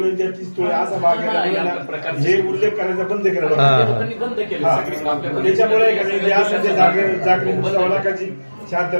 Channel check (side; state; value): both; inverted; correlation -1.00